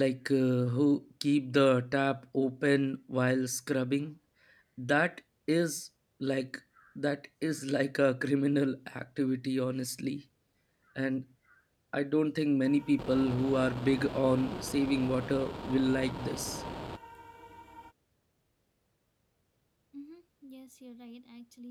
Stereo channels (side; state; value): both; identical; correlation 1.00